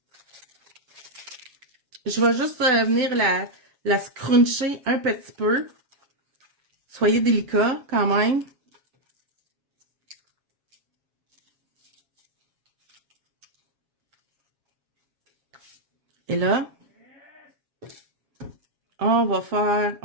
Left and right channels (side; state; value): left; late; 7.3 ms